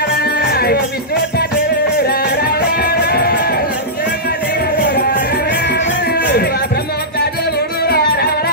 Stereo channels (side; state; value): both; normal; correlation -0.14